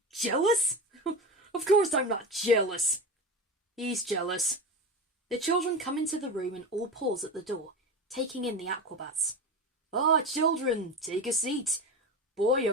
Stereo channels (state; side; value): normal; both; correlation 0.25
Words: Jealous? Of course I'm not jealous. He's jealous. The children come into the room and all pause at the door, taking in the Aquabats. Ah, children, take a seat. Boy,